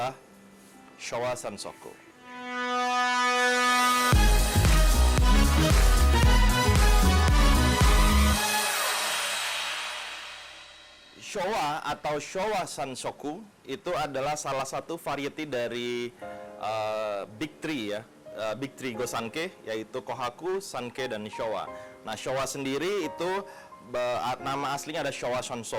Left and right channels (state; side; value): identical; both; correlation 1.00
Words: Showa Sansoku. Showa atau Showa Sansoku itu adalah salah satu variety dari Big Three ya, Big Three Gosanke, yaitu Kohaku, Sanke, dan Showa. Nah, Showa sendiri itu nama aslinya ada Showa